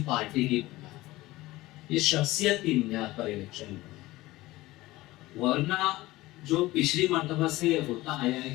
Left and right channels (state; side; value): quieter; right; 18.5 dB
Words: پارٹی کی بنیاد پر. یہ شخصیت کی بنیاد پر الیکشن ہوا. ورنہ جو پچھلی مرتبہ سے یہ ہوتا آیا ہے